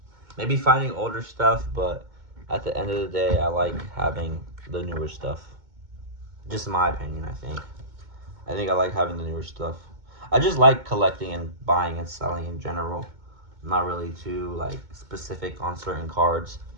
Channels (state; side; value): late; left; 2.2 ms